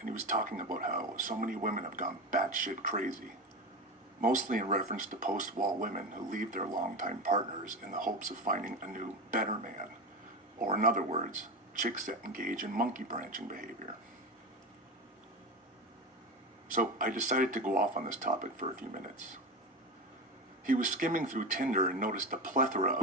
he was talking about how so many women have gone batshit crazy, mostly in reference to post-wall women who leave their longtime partners in the hopes of finding a new, better man, or in other words, chicks that engage in monkey branching behavior. So I decided to go off on this topic for a few minutes. He was skimming through Tinder and noticed a plethora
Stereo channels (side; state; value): both; normal; correlation 0.22